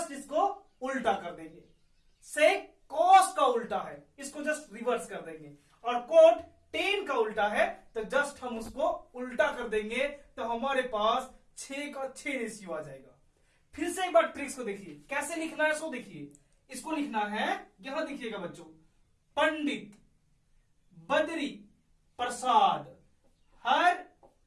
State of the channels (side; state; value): both; identical; correlation 1.00